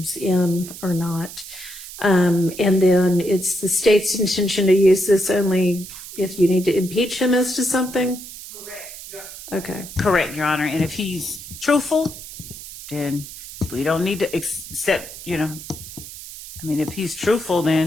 in or not. And then it's the state's intention to use this only if you need to impeach him as to something? Correct. Okay. Correct, Your Honor. And if he's truthful, then we don't need to accept, I mean, if he's truthful,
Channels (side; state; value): right; noise; hiss, 13 dB below the sound